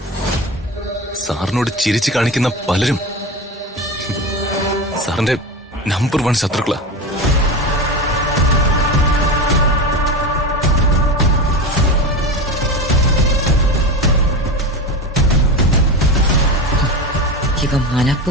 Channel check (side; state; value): both; normal; correlation 0.23